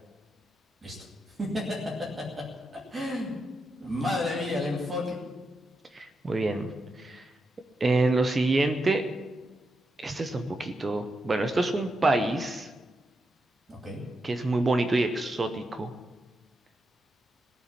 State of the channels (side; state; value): both; normal; correlation 0.85